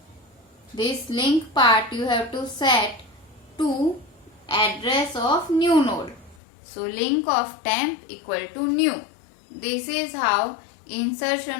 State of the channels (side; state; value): right; drops out; at 6.4 s